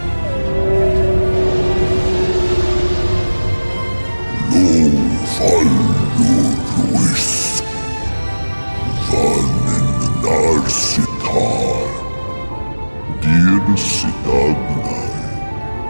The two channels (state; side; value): inverted; both; correlation -1.00